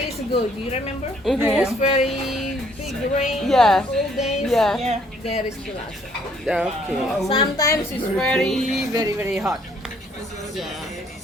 ago, do you remember? Mhm. It's very big rain. Yeah. All days. Yeah. Yeah. There is still outside. Okay. Sometimes it's very, very, very hot.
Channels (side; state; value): both; normal; correlation 0.64